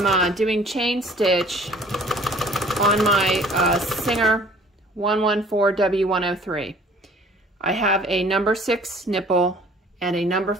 doing chain stitch on my Singer 114W103. I have a number 6 nipple and a number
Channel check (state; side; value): normal; both; correlation 0.52